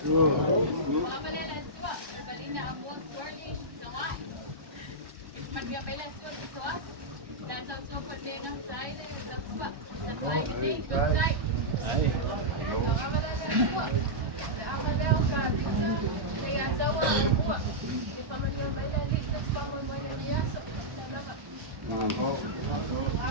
Ovale Letauā. Balinya amon swirling Tagoa'i. Mangia bela swirling soas. Dan so padena side Letauā. Letauā gede side. Ovale Letauā. Leiataua e mua. E whamangia mai la li, te whamoi mai la li aso. Tanama.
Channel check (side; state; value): left; late; 1.1 ms